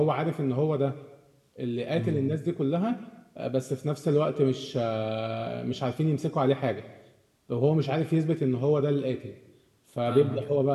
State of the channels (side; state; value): both; identical; correlation 1.00